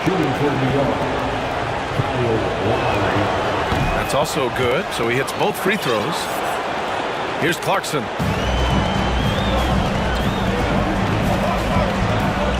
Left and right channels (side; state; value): both; identical; correlation 1.00